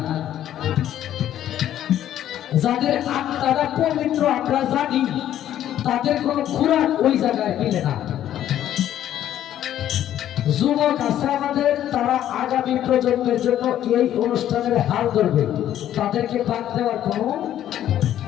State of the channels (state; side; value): quieter; right; 11.6 dB